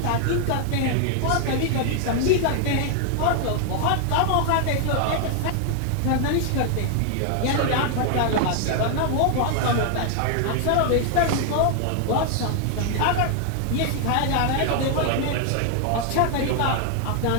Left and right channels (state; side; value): different; both; correlation 0.00